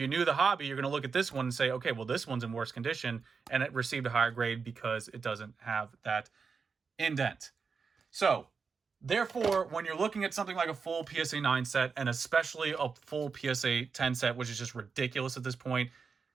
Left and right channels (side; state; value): left; quieter; 5.3 dB